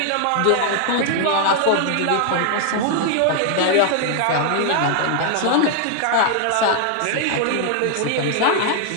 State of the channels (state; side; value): different; both; correlation 0.00